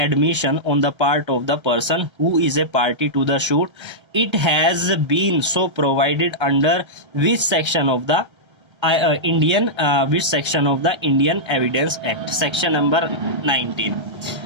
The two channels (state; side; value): late; left; 1.3 ms